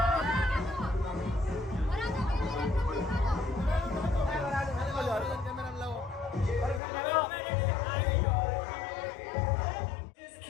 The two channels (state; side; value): drops out; right; at 6.8 s